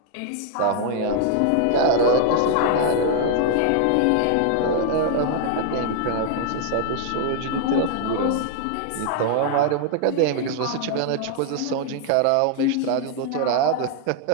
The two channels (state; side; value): different; both; correlation 0.00